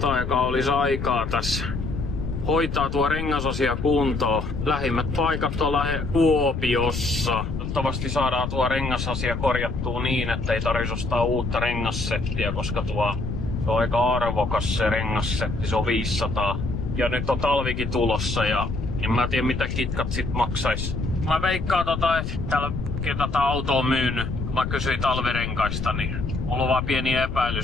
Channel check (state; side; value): noise; left; rumble, 4 dB below the sound